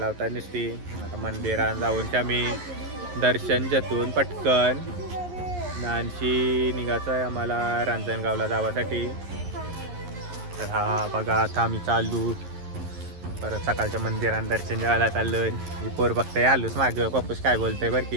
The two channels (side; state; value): left; late; 11 ms